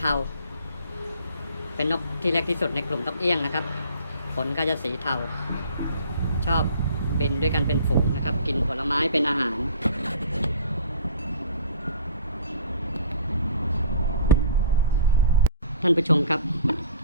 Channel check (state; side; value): inverted; both; correlation -0.48